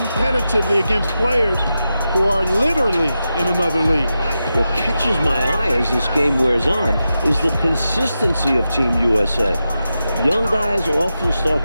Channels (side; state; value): both; inverted; correlation -0.90